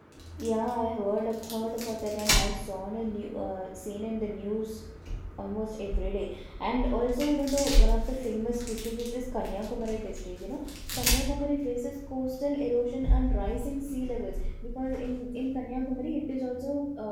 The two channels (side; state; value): both; identical; correlation 1.00